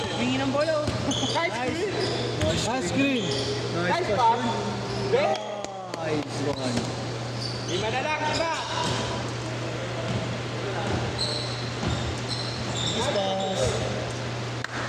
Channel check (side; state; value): both; identical; correlation 1.00